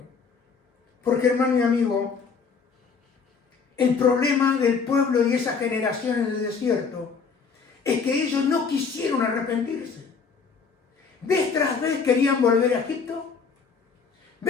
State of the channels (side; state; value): right; quieter; 5.5 dB